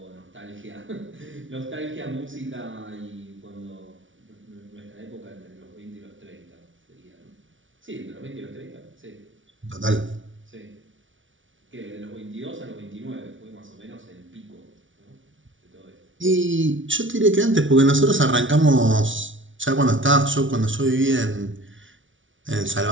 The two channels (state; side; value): late; left; 0.56 ms